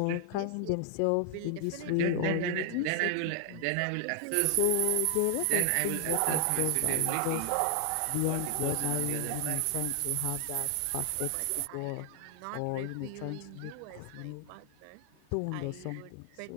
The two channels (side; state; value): both; different; correlation 0.00